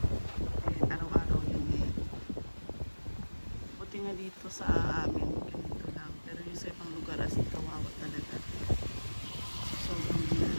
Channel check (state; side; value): inverted; both; correlation -1.00